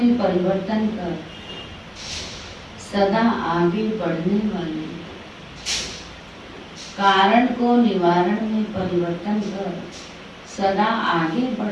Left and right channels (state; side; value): identical; both; correlation 1.00